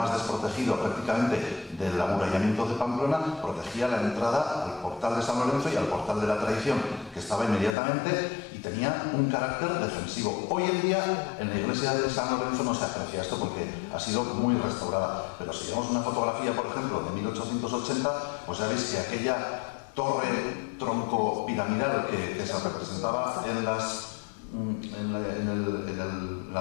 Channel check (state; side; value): drops out; right; at 7.8 s